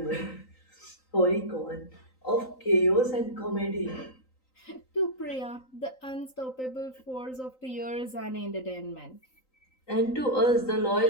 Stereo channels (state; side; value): late; right; 3.9 ms